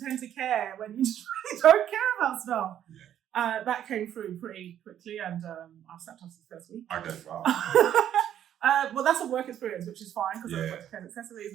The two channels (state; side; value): quieter; left; 10.5 dB